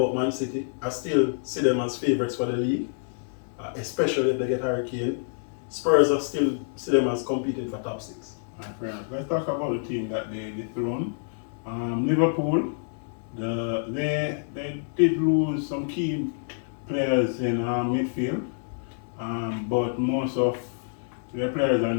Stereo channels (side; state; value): right; silent; digital silence